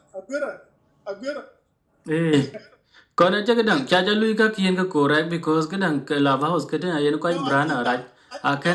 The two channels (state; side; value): identical; both; correlation 1.00